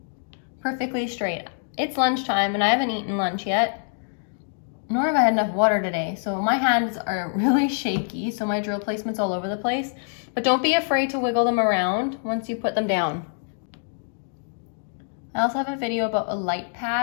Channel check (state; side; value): silent; right; digital silence